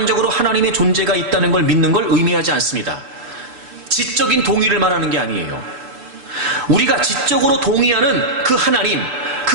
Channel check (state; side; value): late; left; 6.9 ms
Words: 하나님의 존재가 있다는 걸 믿는 걸 의미하지 않습니다. 지적인 동의를 말하는 게 아니에요. 우리가 지적으로 동의하는 그